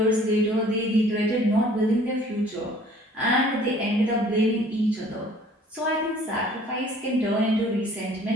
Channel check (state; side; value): normal; both; correlation 0.54